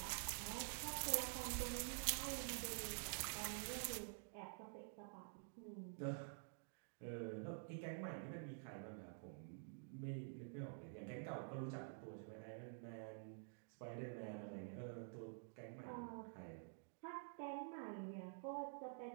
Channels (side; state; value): left; silent; digital silence